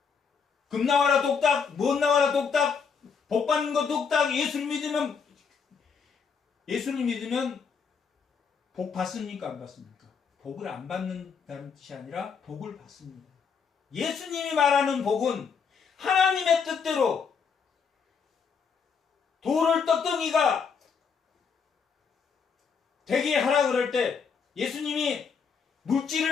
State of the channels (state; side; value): quieter; right; 6.0 dB